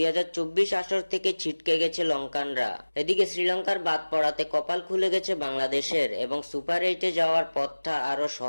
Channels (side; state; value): both; inverted; correlation -1.00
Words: আসর থেকে ছিটকে গেছে লঙ্কানরা। এদিকে শ্রীলঙ্কার বাদ পড়াতে কপাল খুলে গেছে বাংলাদেশের এবং সুপার এইটে যাওয়ার পথটা আরো